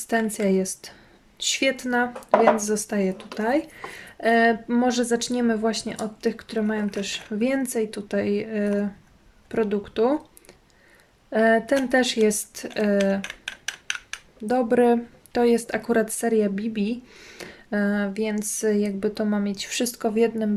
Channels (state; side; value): identical; both; correlation 1.00